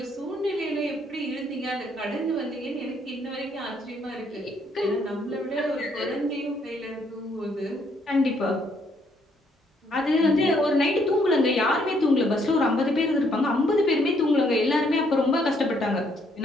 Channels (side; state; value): both; normal; correlation 0.69